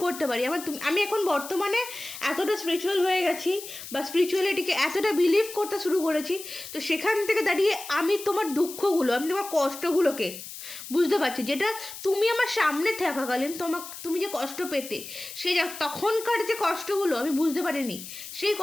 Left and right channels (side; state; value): left; noise; hiss, 12 dB below the sound